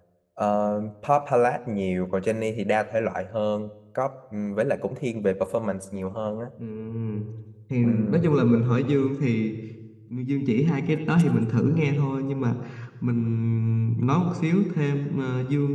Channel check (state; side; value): identical; both; correlation 1.00